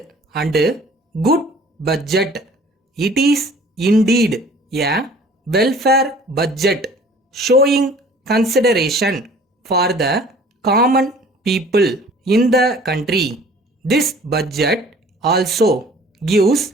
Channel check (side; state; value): both; normal; correlation 0.50